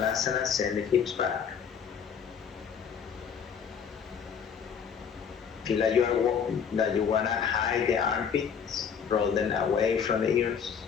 send the hips back. Feel like you wanna hide the armpits, roll them away from the ears.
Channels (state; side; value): quieter; right; 7.1 dB